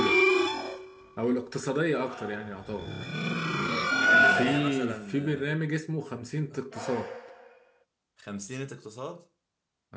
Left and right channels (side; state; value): both; identical; correlation 1.00